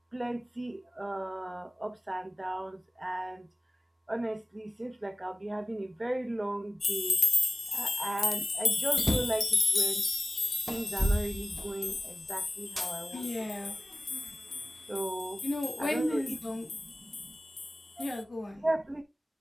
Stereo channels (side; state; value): both; normal; correlation 0.96